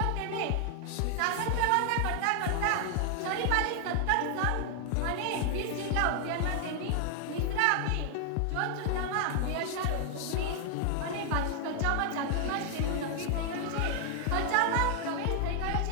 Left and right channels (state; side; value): different; both; correlation 0.00